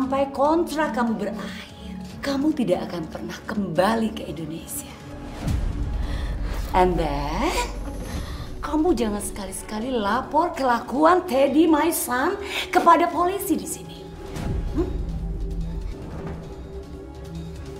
kontrak kamu berakhir, kamu tidak akan pernah kembali ke Indonesia. And then, kamu jangan sekali-sekali lapor kelakuan Teddy, my son, kepada polisi di sini.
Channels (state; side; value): identical; both; correlation 1.00